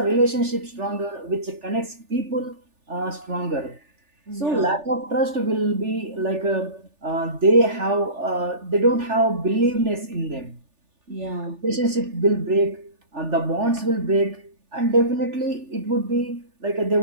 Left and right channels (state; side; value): late; left; 3.4 ms